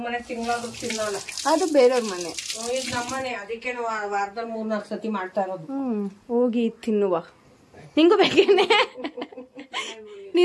ಮನೆ ತಿಂಗಳಾದ್ರೂ ತಿನ್ನಲ್ಲ. ಅದು ಬೇರೆಯವ್ರ ಮನೆ, ಇದು ನಮ್ಮನೆ. ಅದಕ್ಕೆ ವಾರದಲ್ಲಿ 3-4 ಸತಿ ಮಾಡ್ತಾ ಇರೋದು. ಹೋಗಿ ತಿನ್ನುವ. ನಿಂಗೂ ಬೇಕೇನೆ?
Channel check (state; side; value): identical; both; correlation 1.00